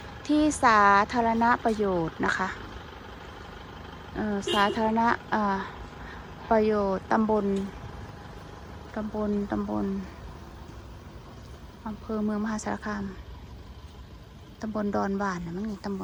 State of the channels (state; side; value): identical; both; correlation 1.00